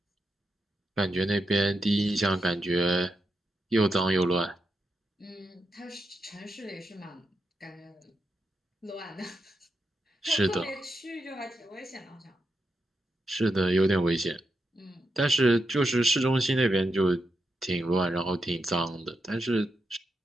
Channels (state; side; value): normal; both; correlation 0.85